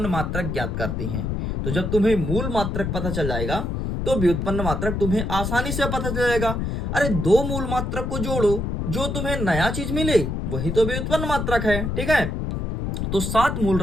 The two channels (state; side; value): noise; left; rumble, 2 dB below the sound